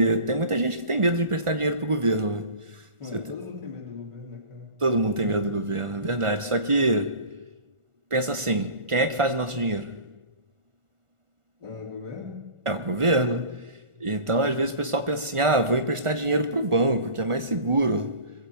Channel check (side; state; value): left; late; 1.4 ms